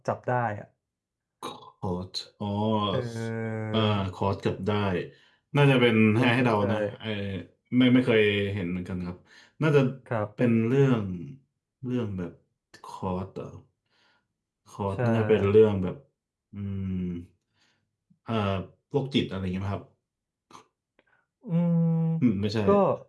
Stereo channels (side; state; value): both; identical; correlation 1.00